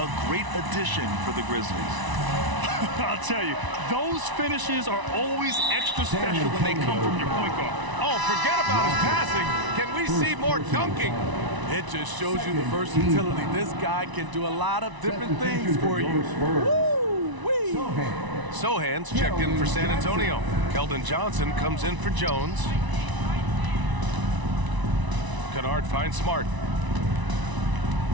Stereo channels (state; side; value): late; left; 1.0 ms